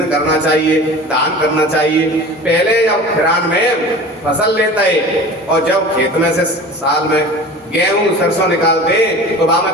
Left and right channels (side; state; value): both; normal; correlation 0.38